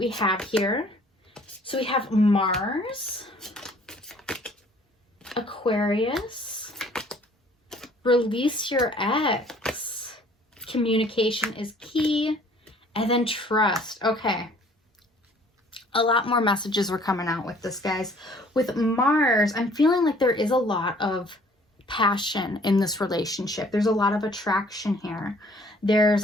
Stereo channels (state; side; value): normal; both; correlation 0.56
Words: have here? So we have Mars, Aquarius, release your ex, communication is key, and then trust. Okay. A lot more messages were coming out with this, guys. With Mars, I'm feeling like there is a lot of passion in this relationship. There's a lot of attraction here. There's